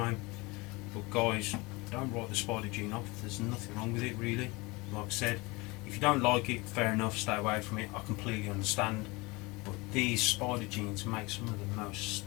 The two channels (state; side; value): quieter; right; 24.5 dB